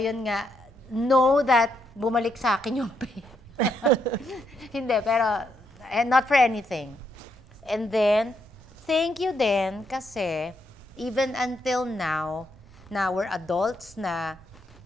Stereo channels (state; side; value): noise; right; rumble, 24 dB below the sound